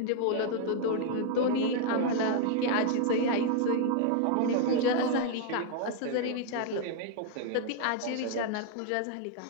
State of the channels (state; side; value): different; both; correlation 0.00